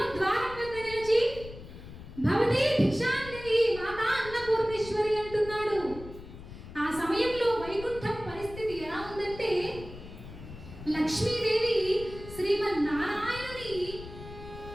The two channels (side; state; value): left; noise; rumble, 14 dB below the sound